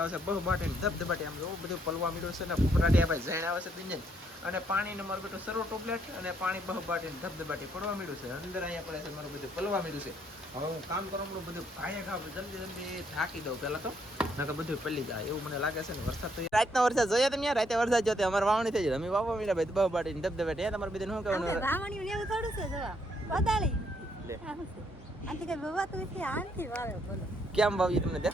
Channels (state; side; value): normal; both; correlation 0.71